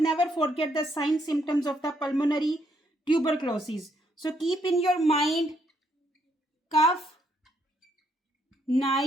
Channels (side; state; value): both; normal; correlation 0.73